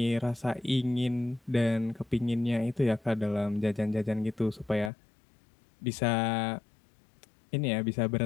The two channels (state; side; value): drops out; right; at 4.9 s